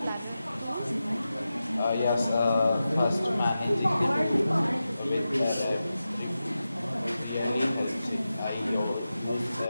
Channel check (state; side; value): inverted; both; correlation -0.92